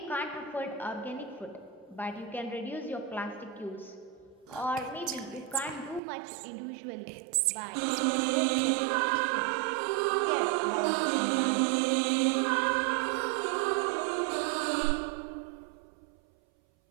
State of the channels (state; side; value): drops out; left; at 6.0 s